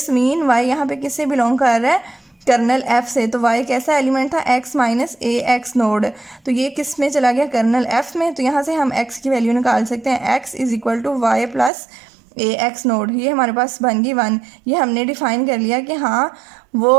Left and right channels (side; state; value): left; drops out; at 11.7 s